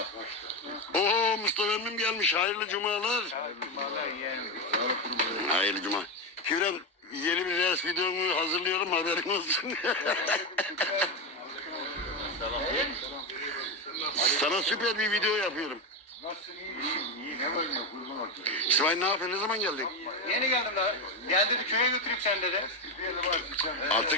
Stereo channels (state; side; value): normal; both; correlation 0.12